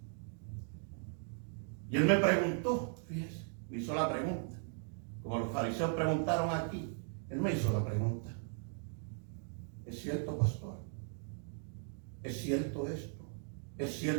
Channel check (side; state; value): left; silent; 52 dB below the other